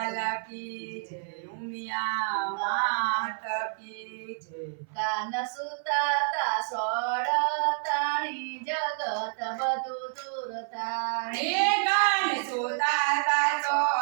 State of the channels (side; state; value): left; silent; 56 dB below the other